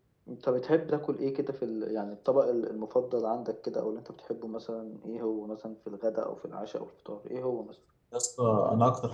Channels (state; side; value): identical; both; correlation 1.00